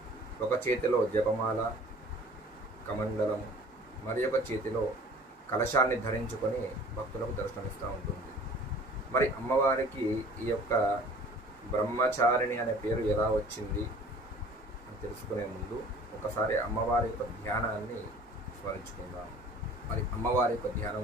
ఒక చేతిలో జపమాల కమండలము మరి ఒక చేతిలో కలశాన్ని ధరించుకొని భక్తులకు దర్శనమిస్తూ ఉంటుంది. మరి అమ్మవారికి ఈ యొక్క బ్రహ్మచారిణి అనే పేరు ఎలా వచ్చింది అని తెలుసుకునే ముందు ఒకసారి అమ్మవారి యొక్క ధ్యానాన్ని స్మరించుకుందాం. మరి అమ్మవారి యొక్క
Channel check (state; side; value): normal; both; correlation 0.48